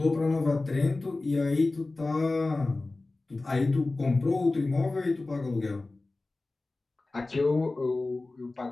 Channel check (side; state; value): right; quieter; 3.2 dB